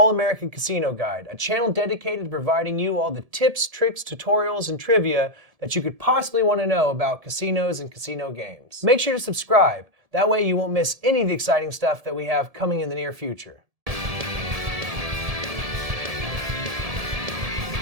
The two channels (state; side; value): late; left; 1.7 ms